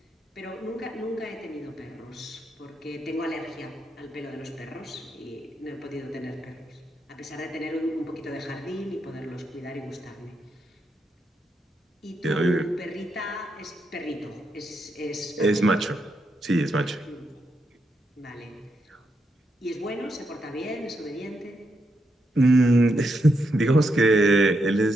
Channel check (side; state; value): both; normal; correlation 0.81